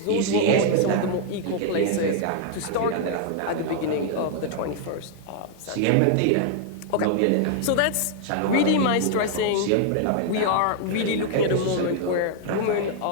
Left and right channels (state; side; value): different; both; correlation 0.00